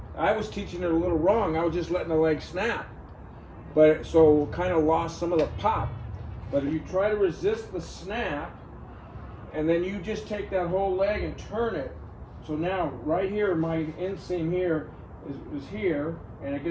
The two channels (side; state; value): both; identical; correlation 1.00